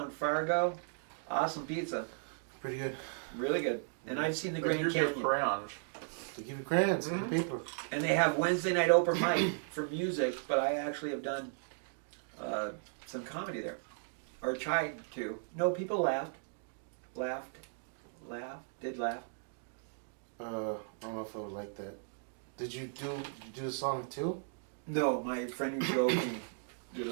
Fargo, awesome pizza, Pretty good. really good. And I've seen the But Grand here's your Canyon. crayons. They give you crayons and paper. And they have Wednesday night open mic for music, but I actually have done some comedy there, or tried to. No, people laughed. Did laugh. I don't know if I would like that. Did you do the song too? No, my friend who drove me did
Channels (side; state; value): left; silent; digital silence